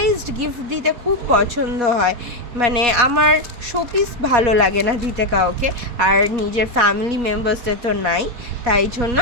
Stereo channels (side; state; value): left; late; 4.2 ms